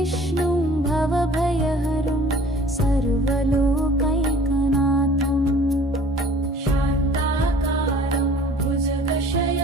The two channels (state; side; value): normal; both; correlation 0.49